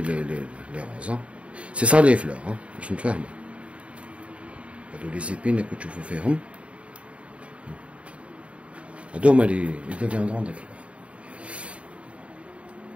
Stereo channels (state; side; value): late; left; 0.062 ms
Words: روز سي سا لي فلور باش نتفاهمو. هادو لي زيبين اللي كتشوفو فيهم هادو هما لي deviendront des fleurs.